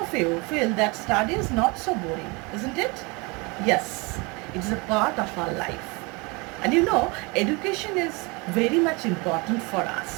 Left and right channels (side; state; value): left; quieter; 27.8 dB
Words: you feel that study is not so boring, isn't it? Yes, it is a part of our life. And education is very much important for